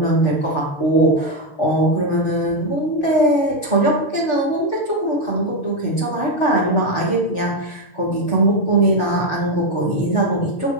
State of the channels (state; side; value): late; right; 6.4 ms